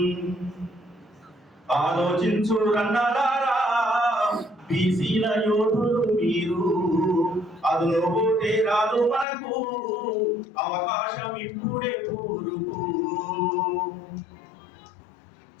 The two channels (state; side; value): drops out; right; at 9.2 s